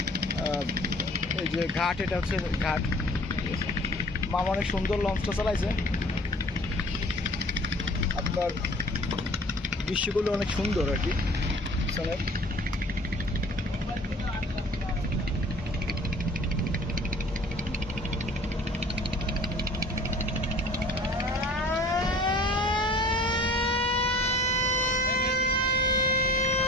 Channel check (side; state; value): both; normal; correlation 0.49